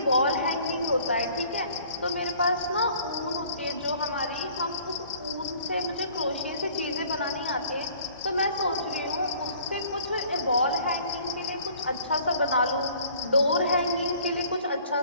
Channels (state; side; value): inverted; both; correlation -0.54